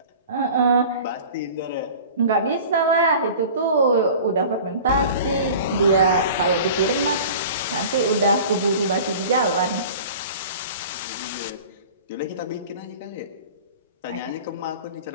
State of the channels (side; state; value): both; inverted; correlation -0.41